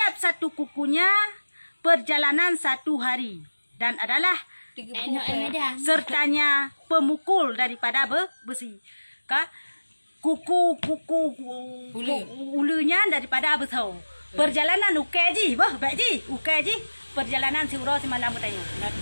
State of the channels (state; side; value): inverted; both; correlation -1.00